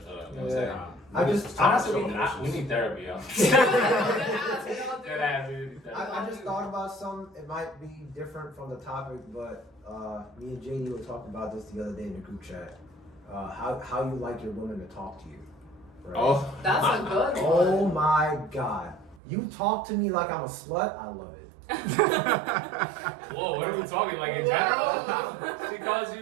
up. You know what I'm saying? I just Honestly, we need therapy, yo. I just thought about something. It might be different from the topic, but me and JD were talking about this the other day in the group chat. How you like your women to talk to you. Right? Oh, That's a good one. Oh my God. You talk to me like I'm a slut. I love it. Whoa, what are we talking like in general? She calls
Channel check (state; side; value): drops out; left; at 19.2 s